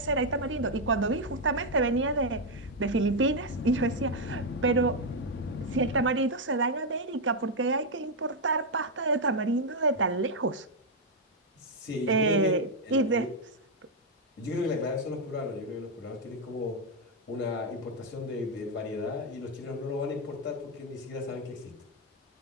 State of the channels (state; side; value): normal; both; correlation 0.01